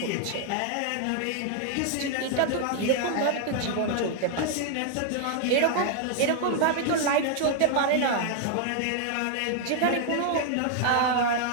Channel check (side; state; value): both; different; correlation 0.00